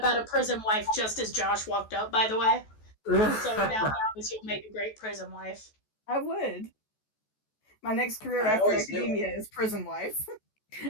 a prison wife just as Josh walked up, by the way. So now you'll make a great prison wife. I would. My next career after academia is prison wife.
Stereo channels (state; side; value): late; right; 14 ms